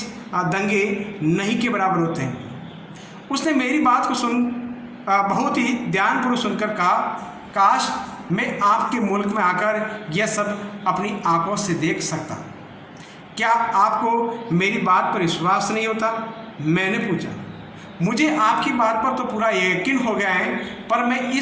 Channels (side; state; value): both; identical; correlation 1.00